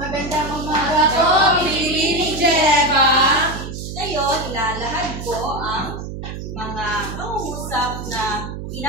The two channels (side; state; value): right; noise; hum, 8 dB below the sound